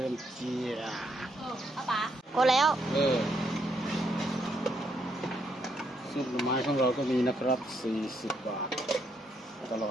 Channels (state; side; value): normal; both; correlation 0.75